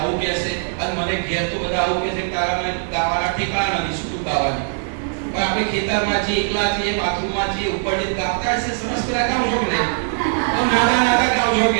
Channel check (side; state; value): left; silent; digital silence